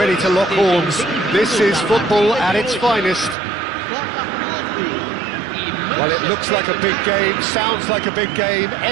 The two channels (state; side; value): drops out; left; at 3.4 s